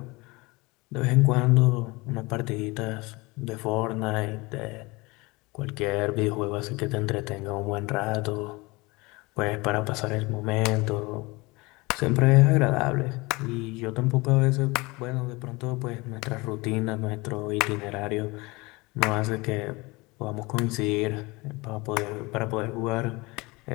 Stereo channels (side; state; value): right; quieter; 24.2 dB